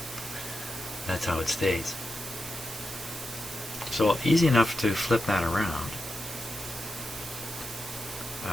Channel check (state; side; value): noise; right; hiss, 10 dB below the sound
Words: that's how it stays. So easy enough to flip that around.